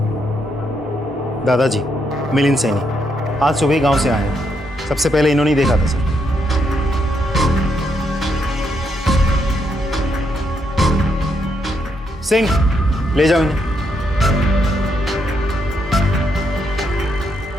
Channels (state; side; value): normal; both; correlation 0.78